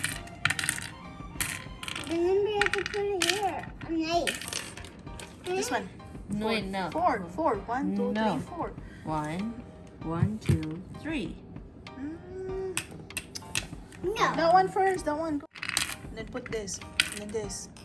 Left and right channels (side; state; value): both; identical; correlation 1.00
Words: Remember, you have to put it here. A knife. This one. No, wait, no. 4. 1, 2, No. 3, 4. 1, 2, 3. No. That one first. That one. And then put this. And then this.